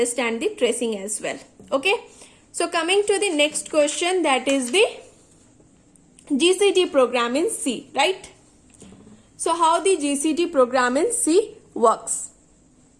the tracing as well. Okay. So coming to the next question, that is the GCD program in C, right? So how the GCD program in C works.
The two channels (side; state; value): both; identical; correlation 1.00